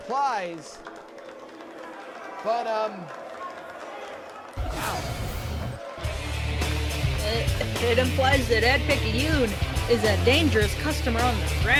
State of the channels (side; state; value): both; identical; correlation 1.00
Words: but wow. It implies that Ed Picayune is a dangerous customer on the